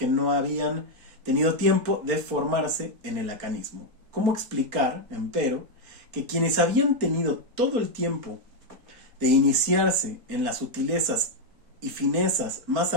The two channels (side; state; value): left; late; 4.3 ms